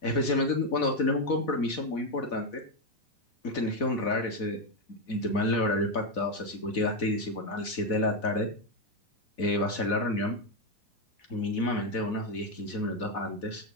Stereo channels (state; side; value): late; right; 4.1 ms